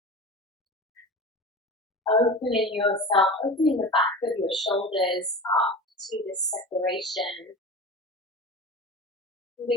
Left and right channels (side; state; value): both; normal; correlation 0.32